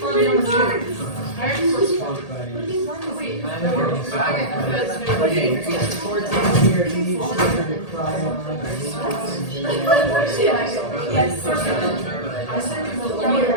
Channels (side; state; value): right; late; 1.8 ms